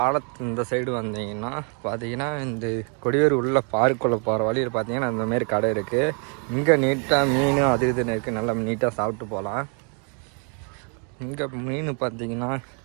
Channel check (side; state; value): left; quieter; 39.4 dB